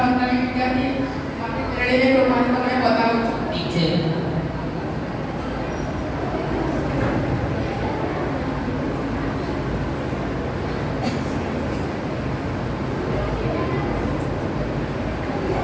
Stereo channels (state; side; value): identical; both; correlation 1.00